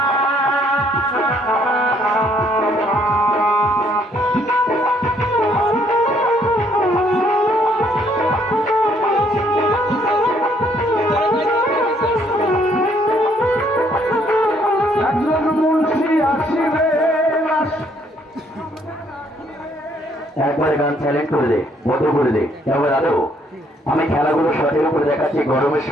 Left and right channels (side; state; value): both; normal; correlation 0.67